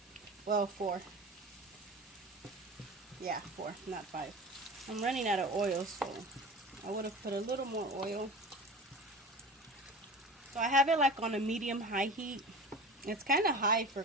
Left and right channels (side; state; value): both; normal; correlation 0.34